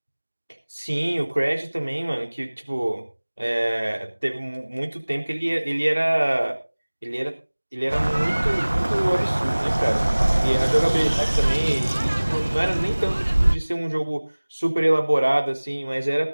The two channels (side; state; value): both; inverted; correlation -1.00